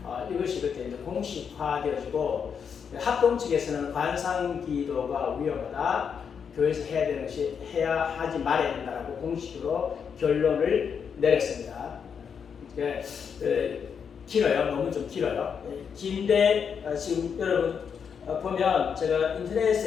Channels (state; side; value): quieter; right; 6.9 dB